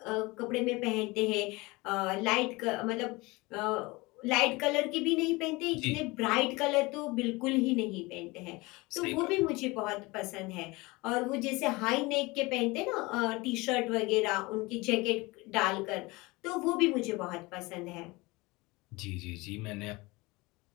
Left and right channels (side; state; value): right; quieter; 23.4 dB